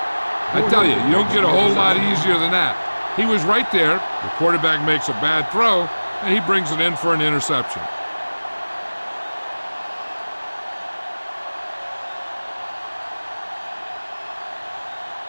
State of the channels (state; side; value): inverted; both; correlation -1.00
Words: I tell you, you don't get a whole lot easier than that. He was right there. The quarterback makes a bad throw, and he brings it in for an interception.